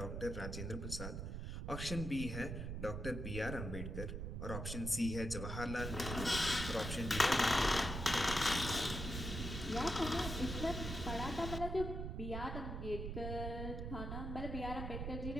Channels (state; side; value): noise; right; rumble, 4 dB below the sound